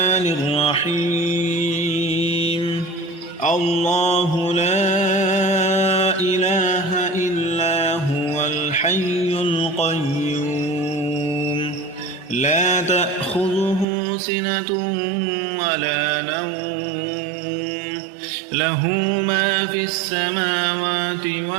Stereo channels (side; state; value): left; drops out; at 13.9 s